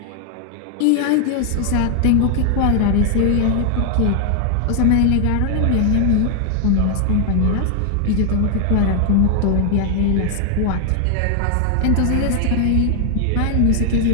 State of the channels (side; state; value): both; different; correlation 0.00